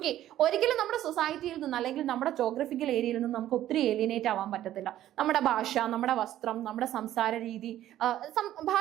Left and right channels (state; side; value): quieter; left; 12.8 dB